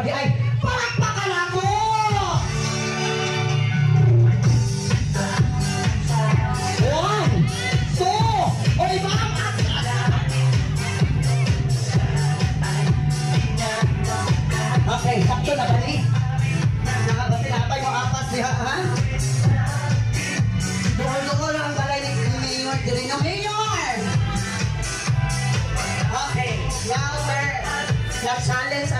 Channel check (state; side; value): identical; both; correlation 1.00